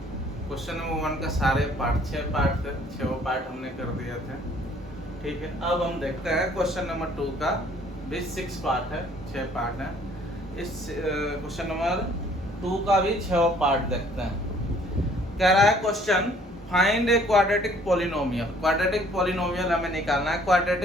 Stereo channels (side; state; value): both; normal; correlation 0.58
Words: नंबर 1 का सारे पार्ट 6 पार्ट थे, 6 पार्ट हमने कर दिए थे। ठीक है, अब हम देखते हैं क्वेश्चन नंबर 2 का भी 6 पार्ट है, 6 पार्ट है। इस क्वेश्चन नंबर 2 का भी 6 पार्ट देखते हैं। कह रहा है question, find a quadratic polynomial. Quadratic polynomial हमें निकालना है।